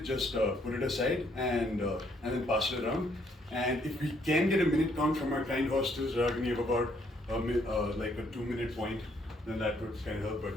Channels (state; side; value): normal; both; correlation 0.69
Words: just put it aside and then pass it around. And if we can get a minute count from our kind hostels, rather than give about like a 2 minute point, then that would kind of help. But